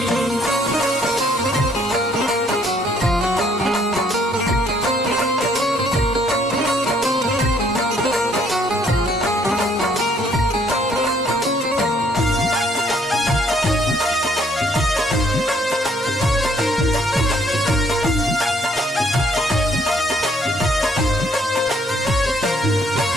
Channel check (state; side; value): normal; both; correlation 0.65